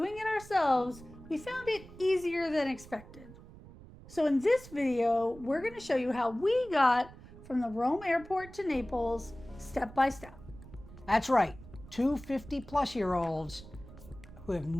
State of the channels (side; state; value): right; noise; rumble, 18 dB below the sound